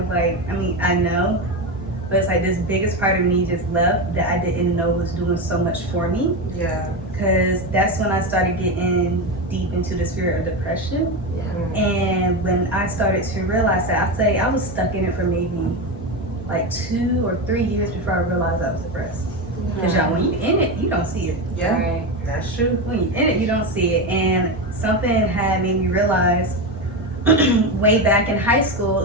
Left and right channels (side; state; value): both; normal; correlation 0.16